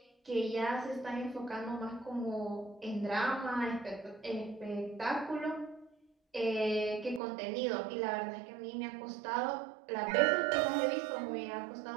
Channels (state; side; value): drops out; left; at 7.2 s